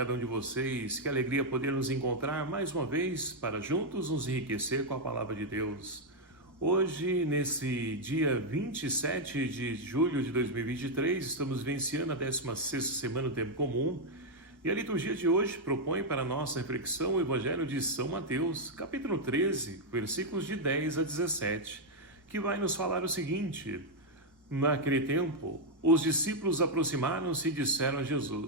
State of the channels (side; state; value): both; normal; correlation 0.00